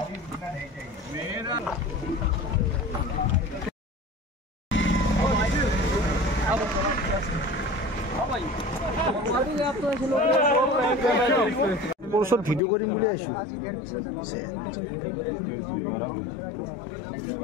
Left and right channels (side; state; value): right; drops out; at 12.6 s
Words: मेरा सब भिडियो करिम বুলি আইছো